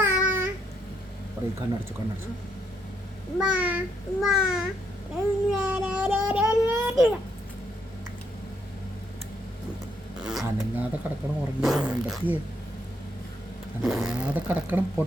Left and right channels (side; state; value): both; normal; correlation 0.75